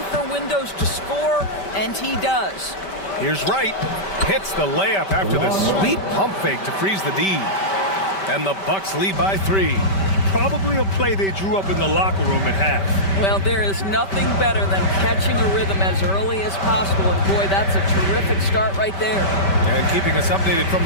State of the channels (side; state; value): right; late; 5.1 ms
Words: for windows to score, and he does. Here's Wright. Hits the layup after the sweet pump fake to freeze the D. And the Bucks lead by 3. Probably a play they drew up in the locker room at half. Well, there is nothing better than catching a rhythm as early as possible, and boy, that's a terrific start right there. And keeping us updated from